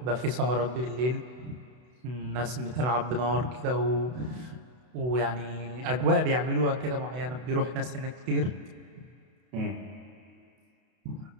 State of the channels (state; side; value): late; left; 32 ms